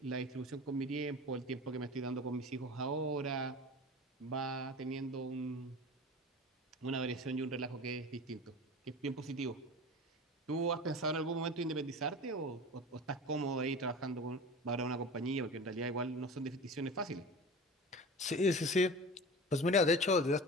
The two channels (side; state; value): both; normal; correlation 0.34